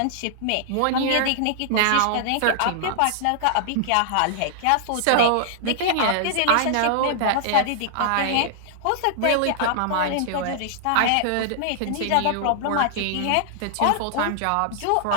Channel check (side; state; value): both; different; correlation -0.01